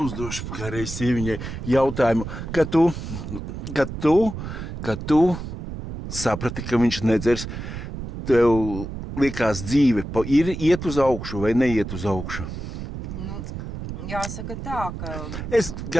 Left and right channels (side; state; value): right; noise; rumble, 8 dB below the sound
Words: uzdošu kā reiz sieviņai jautājumu, kad tu saprati, ka viņš nedzers, tev likās dzīve ir iet uz augšu vai neiet uz augšu? Jāsaka tā, ka... Es